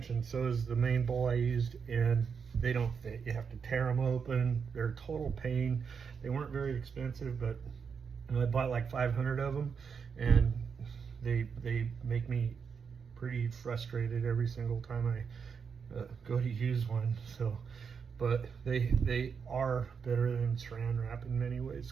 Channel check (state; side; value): quieter; left; 6.2 dB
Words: and so is the main bowl I used, and they don't fit. You have to tear them open. They're a total pain. They weren't very expensive, but I bought like 500 of them, and they make me pretty frustrated every single time I go to use one. So, but they are better than Saran wrap in many ways,